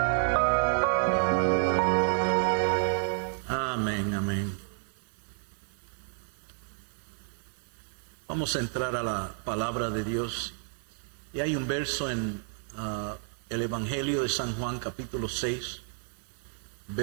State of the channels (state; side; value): silent; left; 57 dB below the other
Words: Amén, amén. Vamos a entrar a la palabra de Dios. Y hay un verso en el Evangelio de San Juan, capítulo 6,